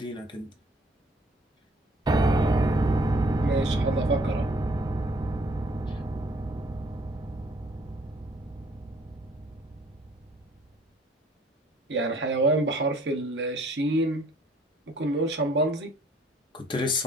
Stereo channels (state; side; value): normal; both; correlation 0.59